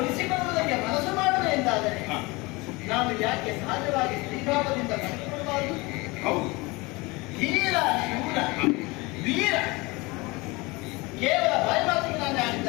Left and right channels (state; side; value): quieter; right; 24.1 dB